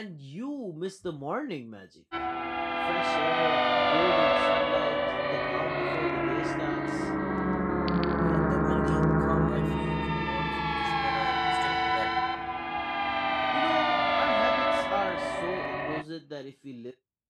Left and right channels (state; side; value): identical; both; correlation 1.00